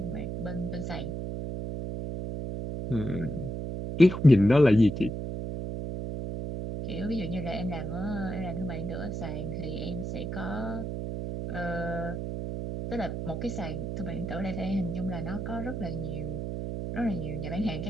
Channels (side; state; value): right; noise; hum, 4 dB below the sound